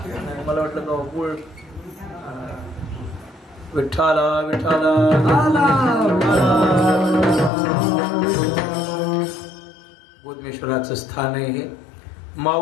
मला वाटलं का गुळ. विठ्ठला विठ्ठला गोदमेश्वराचं स्थान आहे हे.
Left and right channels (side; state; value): right; drops out; at 7.5 s